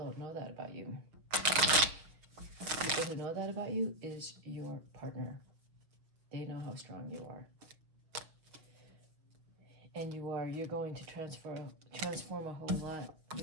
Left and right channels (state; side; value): late; left; 6.4 ms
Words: know that about you. People who know that about you is your partner. They know how strong you are. And you're going to transform a whole lot